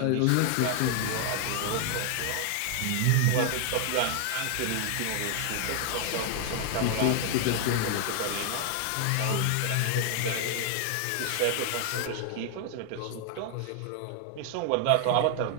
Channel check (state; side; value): different; both; correlation 0.00